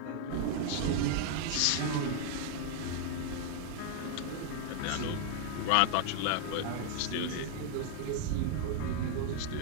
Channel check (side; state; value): both; different; correlation 0.00